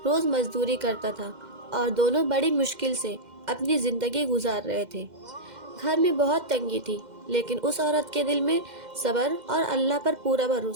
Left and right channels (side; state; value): left; late; 2.1 ms